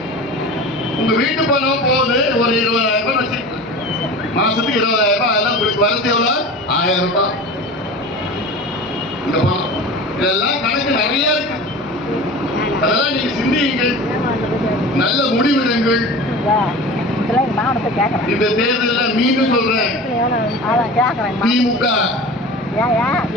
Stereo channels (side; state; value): both; normal; correlation 0.35